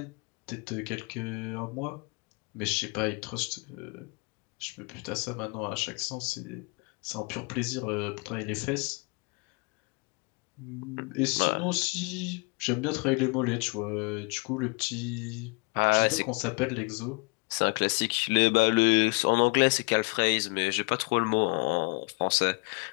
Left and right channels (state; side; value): quieter; right; 31.1 dB